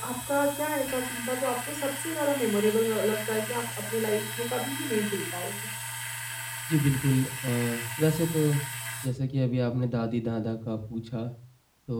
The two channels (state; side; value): identical; both; correlation 1.00